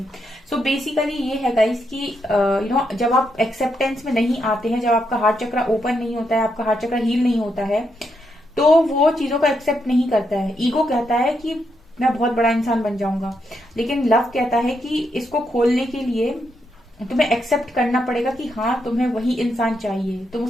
सो बेसिकली ये है गाइस कि जब आप एक्सेप्टेंस में नहीं आते हैं, जब आपका हार्ट चक्र ओपन नहीं होता है, आपका हार्ट चक्र हील नहीं होता है, तो वो चीजों को एक्सेप्ट नहीं करता है। ईगो कहता है कि मैं बहुत बड़ा इंसान बन जाऊंगा, लेकिन लव कहता है कि इसको खोलने के लिए तुम्हें एक्सेप्ट करना पड़ेगा कि हाँ, तुम्हें वही इंसान चाहिए। तुम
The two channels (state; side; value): normal; both; correlation 0.80